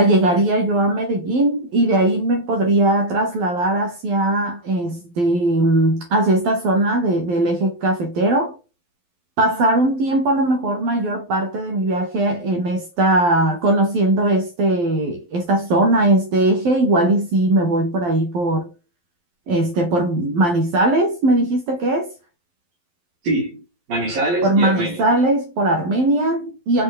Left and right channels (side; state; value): left; late; 12 ms